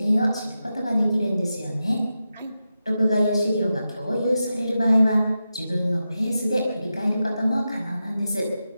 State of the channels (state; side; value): inverted; both; correlation -0.90